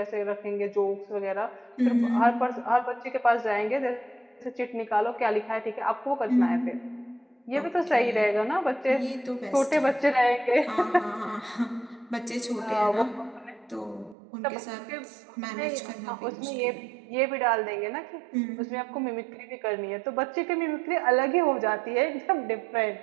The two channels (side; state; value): left; drops out; at 14.2 s